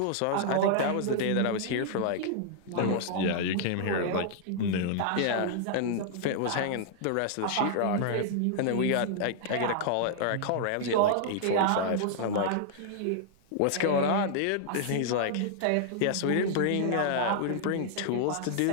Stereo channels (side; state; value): both; different; correlation -0.01